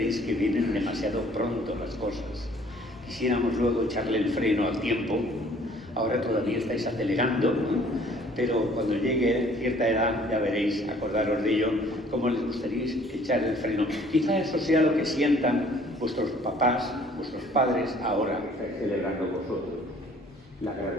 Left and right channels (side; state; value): both; normal; correlation 0.56